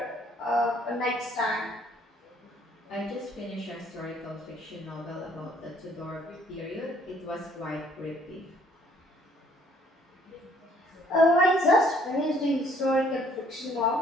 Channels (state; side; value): normal; both; correlation 0.62